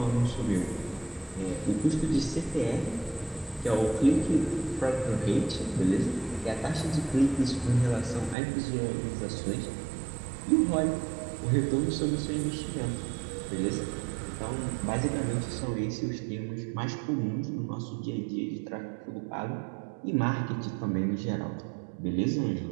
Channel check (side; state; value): left; drops out; at 8.3 s